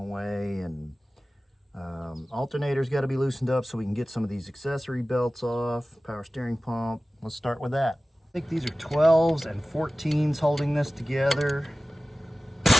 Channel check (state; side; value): normal; both; correlation 0.97